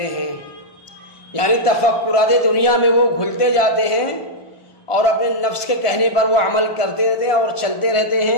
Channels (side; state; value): right; late; 1.2 ms